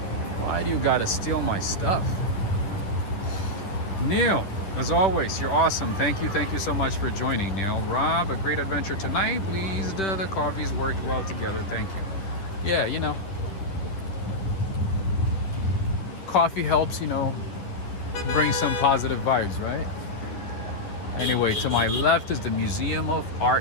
Why do you gotta steal my stuff? Neil, as always, you're awesome. Thank you so much for joining, Neil. Rob, a great adventure tonight. Pleased the coffees worked well together. Thank you. Yeah, you know, coffee helps, bring some positive vibes, right? Anyway, to my left is the Museum of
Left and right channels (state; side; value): late; right; 10 ms